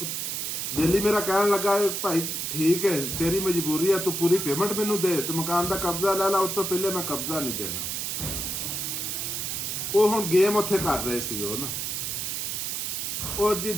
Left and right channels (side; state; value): right; noise; hiss, 2 dB below the sound